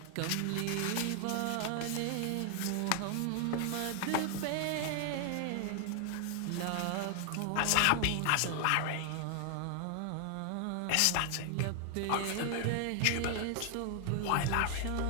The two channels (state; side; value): different; both; correlation 0.00